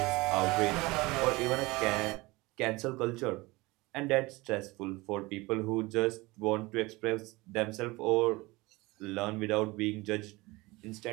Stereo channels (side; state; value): left; quieter; 22.4 dB